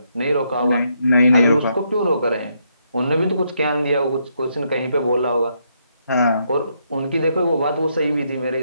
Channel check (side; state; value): both; inverted; correlation -0.76